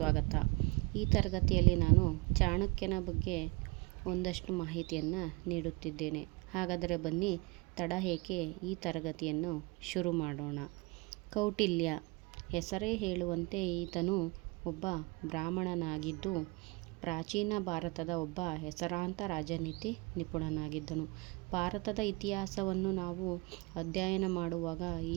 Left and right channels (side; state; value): left; quieter; 26.5 dB